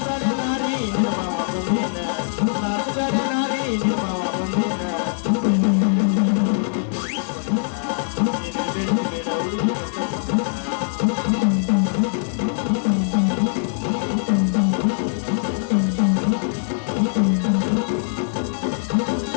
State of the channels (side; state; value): right; silent; digital silence